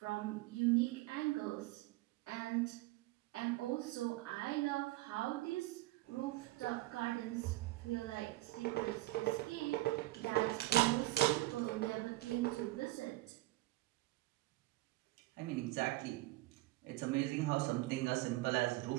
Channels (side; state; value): left; quieter; 18.6 dB